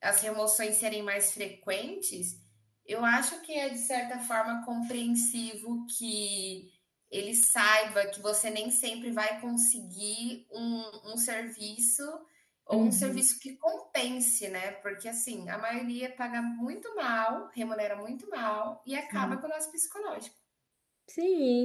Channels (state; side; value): identical; both; correlation 1.00